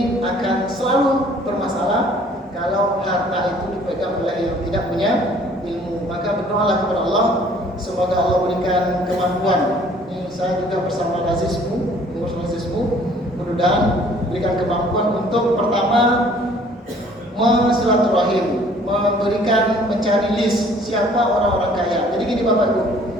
akan selalu bermasalah kalau harta itu dipegang oleh yang tidak punya ilmu. Maka berdoalah kepada Allah, semoga Allah berikan kemampuan. Ini saya juga bersama Lazismu, mudah-mudahan berikan kemampuan untuk pertama silaturahim, memberikan, mencari list siapa orang-orang kaya. Jadi gini Bapak Ibu,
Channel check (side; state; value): both; normal; correlation 0.56